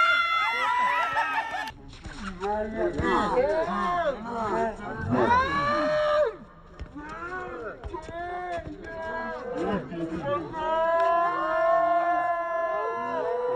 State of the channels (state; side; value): identical; both; correlation 1.00